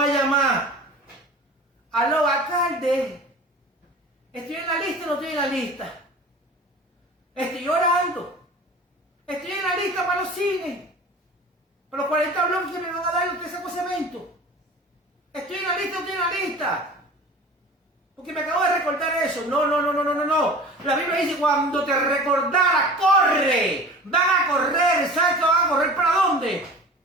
a llamar. Aló, alcalde. ¿Estoy en la lista o no estoy en la lista? Estoy orando. Estoy en la lista para los cines. Para los 40 bloques que me van a dar los que saco ese evento. Estoy en la lista o no estoy en la lista. Porque me acabo de recordar eso. No. La Biblia dice, cuando te recordara, corre. Van a correr. ¿Sabes que van a correr para dónde?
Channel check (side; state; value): both; normal; correlation 0.39